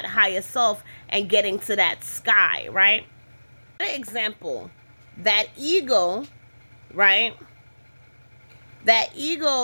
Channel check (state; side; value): inverted; both; correlation -1.00